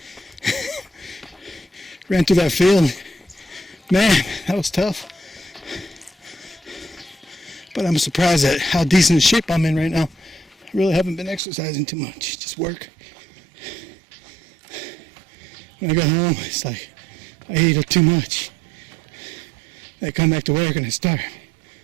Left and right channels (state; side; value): drops out; left; at 11.4 s